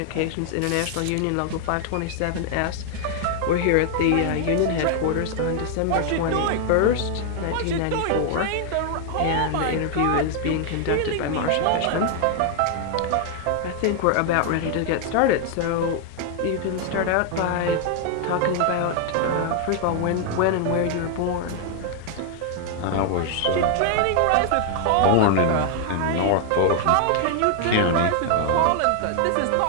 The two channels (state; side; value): different; both; correlation 0.00